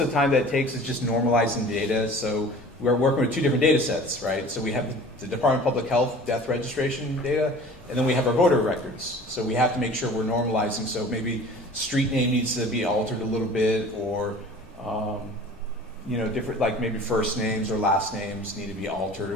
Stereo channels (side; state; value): both; normal; correlation 0.44